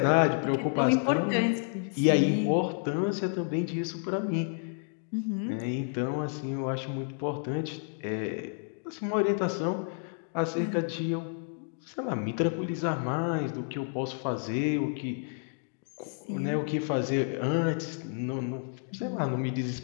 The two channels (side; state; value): right; silent; 58 dB below the other